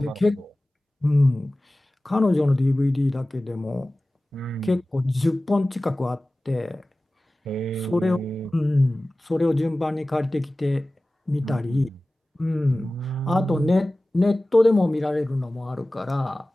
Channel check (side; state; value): both; normal; correlation 0.97